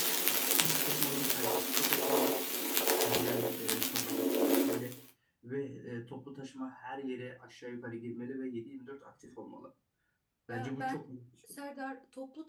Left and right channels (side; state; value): both; identical; correlation 1.00